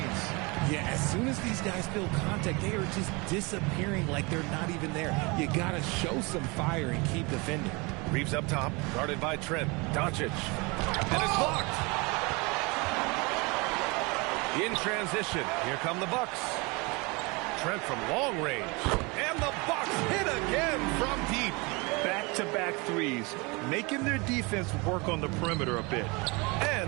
Yeah, as soon as these guys feel contact, they are just disappearing like they're not even there. You gotta show some fire and keep defending. Reeves up top, guarded by Trent. Doncic. And it's blocked. In transition, here come the Bucks. Trent from long range. And the Bucks hit again from deep. Back-to-back threes, making their defense work on the perimeter a bit.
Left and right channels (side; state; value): left; quieter; 27.3 dB